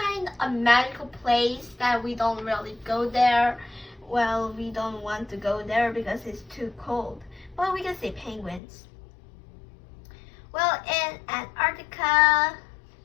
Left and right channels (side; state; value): right; drops out; at 8.6 s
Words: of a magical place that we don't really go there. Well, we don't want to go there because it's too cold. But we can see penguins. Well, in Antarctica,